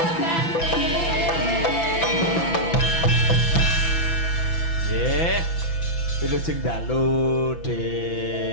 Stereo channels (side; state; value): right; late; 6.0 ms